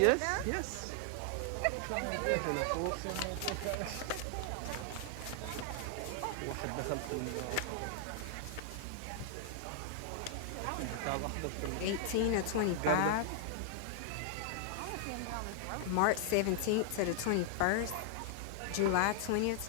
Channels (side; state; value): both; different; correlation -0.01